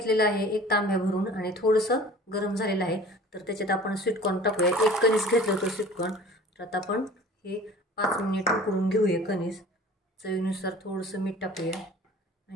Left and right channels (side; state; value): both; normal; correlation 0.45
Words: आहे, एक तांब्या भरून, आणि थोडंसं गरम झालेलं आहे। तर त्याच्यात आपण स्वीट कॉर्न टाकूया। एक कणीस घेतलं होतं स्वीट कॉर्न। तर आता आपण हे 5 मिनिट उकळून घेऊया कणीस। चवीनुसार थोडंसं मीठ टाकूया